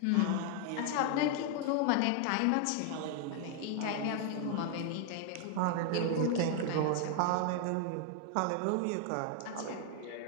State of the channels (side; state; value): both; different; correlation 0.00